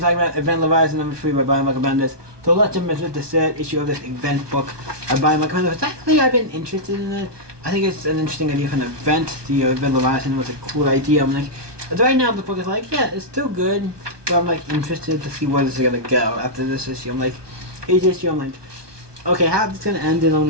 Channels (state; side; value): late; left; 1.2 ms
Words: about Event Leviathan number 3 by Brian Michael Bendis. So let's jump into the third issue of this event book by Brian Michael Bendis. Actually, I've been interested in it. I think it's an interesting idea for an event. The Event Leviathan was a cool idea. I'm like, right now the book is like, yeah, it's still good, but I'm like interested to see where this is gonna go after this issue. I'm like, each issue, I'm like, okay, how is this gonna end in